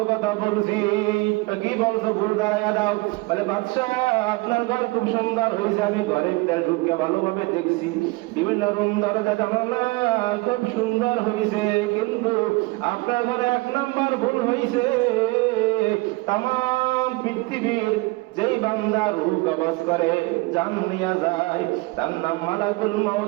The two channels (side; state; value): left; quieter; 23.8 dB